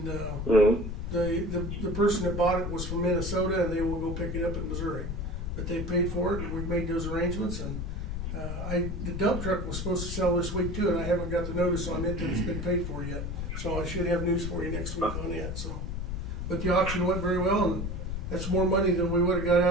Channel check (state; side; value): noise; left; rumble, 4 dB below the sound